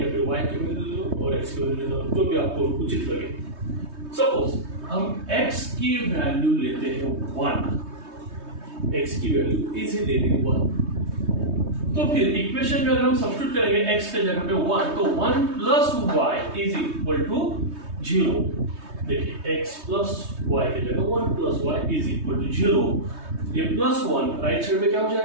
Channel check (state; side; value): late; left; 3.2 ms